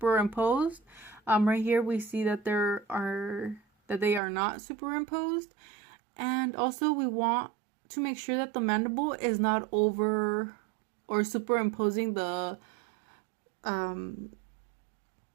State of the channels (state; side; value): drops out; left; at 4.2 s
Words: Right here we see that they are not superimposed. And also we want to make sure that the mandible is not over or superimposing the